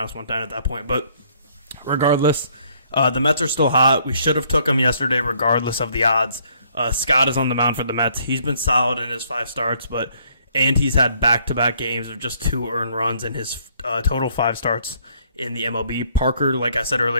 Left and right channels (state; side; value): inverted; both; correlation -0.65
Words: 110 at that point. But regardless, the Mets are still hot. We should have took them yesterday regardless of the odds. Scott is on the mound for the Mets. He's been solid in his 5 starts, and he's had back-to-back games of just 2 earned runs in his total 5 starts in the MLB. Parker, like I said